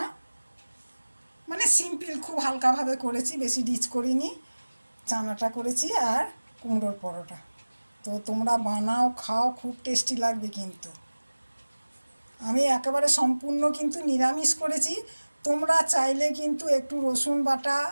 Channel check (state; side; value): inverted; both; correlation -1.00